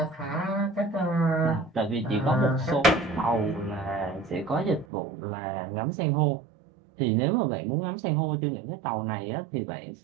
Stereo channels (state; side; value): drops out; left; at 4.9 s